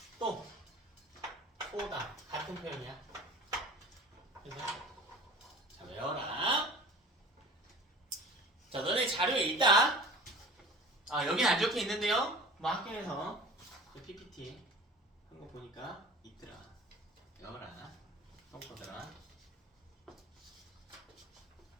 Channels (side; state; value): both; normal; correlation 0.40